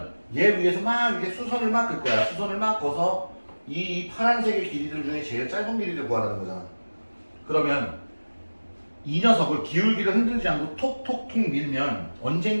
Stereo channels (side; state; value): both; inverted; correlation -1.00